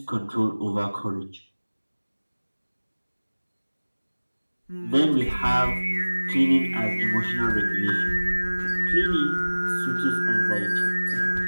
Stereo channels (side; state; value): both; inverted; correlation -1.00